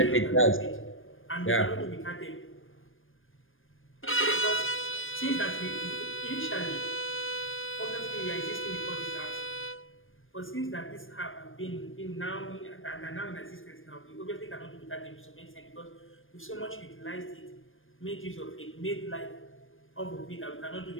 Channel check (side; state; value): right; late; 0.59 ms